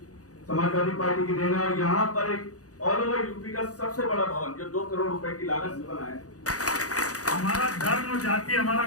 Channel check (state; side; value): late; right; 0.67 ms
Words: समाजवादी पार्टी की देन है। और यहाँ पर एक ऑल ओवर यूपी का सबसे बड़ा भवन जो 2 करोड़ रुपए की लागत से बना है। हमारा धर्म जाति हमारा